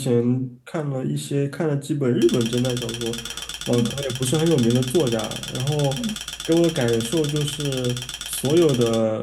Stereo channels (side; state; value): both; identical; correlation 1.00